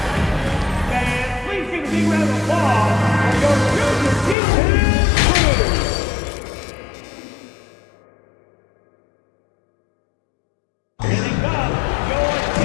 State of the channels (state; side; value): drops out; right; at 4.4 s